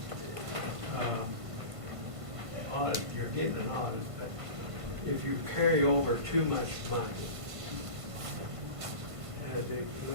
Audit, you're getting an audit, but if you carry over too much money,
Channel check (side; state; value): left; late; 1.5 ms